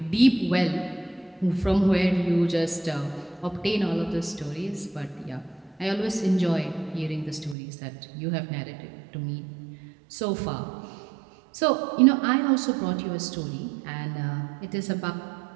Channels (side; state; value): left; drops out; at 7.6 s